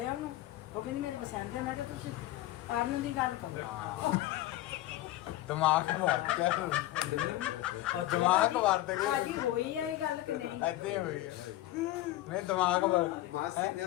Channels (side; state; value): right; quieter; 15.6 dB